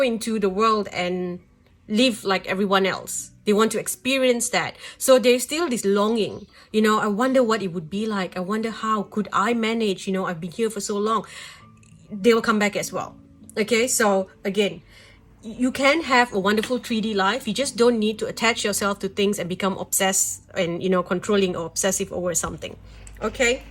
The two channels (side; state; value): both; identical; correlation 1.00